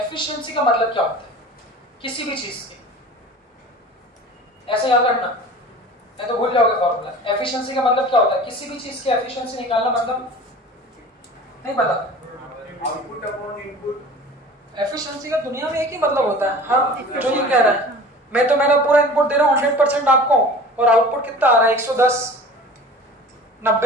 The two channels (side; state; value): both; normal; correlation 0.40